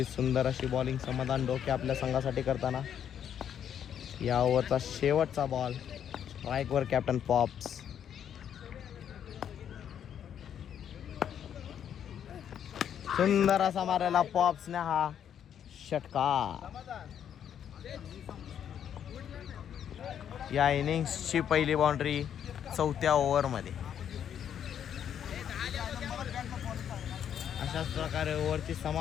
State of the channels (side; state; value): right; quieter; 9.1 dB